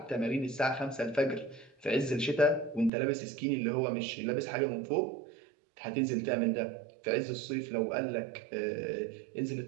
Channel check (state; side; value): drops out; left; at 2.9 s